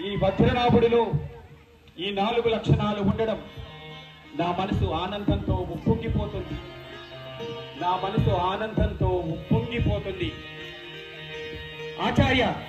ఈ వజ్రనాభుడిలో ఈ 4 లక్షణాలు ఉండడం నా మనసు ఆనందంతో ఉప్పొంగిపోతుంది. నా మనసు ఆనందంతో ఉప్పొంగిపోతుంది. ఆచార్య,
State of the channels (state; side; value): identical; both; correlation 1.00